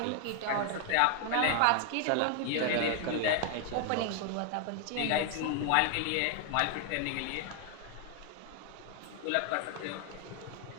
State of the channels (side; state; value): both; different; correlation 0.00